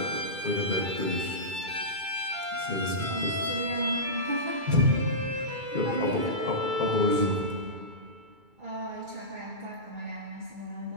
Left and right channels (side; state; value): left; late; 2.3 ms